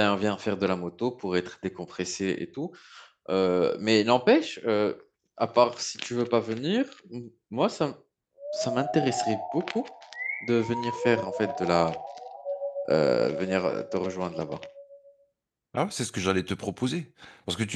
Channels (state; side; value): identical; both; correlation 1.00